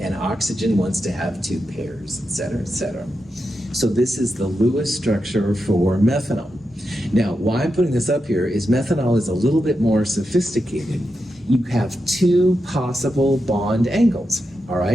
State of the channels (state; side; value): normal; both; correlation 0.88